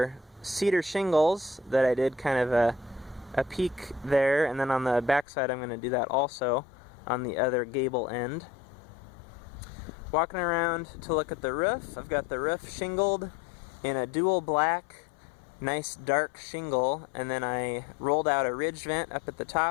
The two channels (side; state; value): right; drops out; at 5.2 s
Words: cedar shingles that I did kind of a peak there, and then on the back side I'm going to do that also on the other gable end. Walking around to look at the roof, I've got the roof shingled in a dual black, nice dark shingle, and then I rolled out a ridge vent up at the